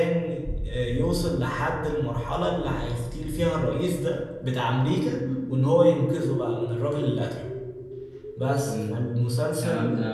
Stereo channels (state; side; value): identical; both; correlation 1.00